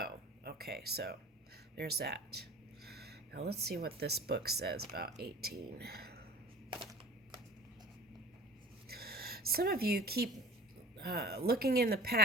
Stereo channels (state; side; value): normal; both; correlation 0.40